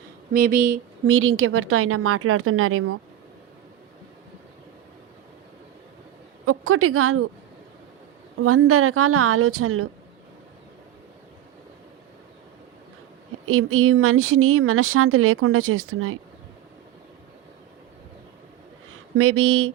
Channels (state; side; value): quieter; left; 12.2 dB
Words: మేబీ మీరు ఇంకెవరితో అయినా మాట్లాడుతున్నారేమో. ఒక్కటి కాదు 100 రకాల ఆలోచనలు ఈ మనిషిని మనశ్శాంతి లేకుండా చేస్తున్నాయి. మేబీ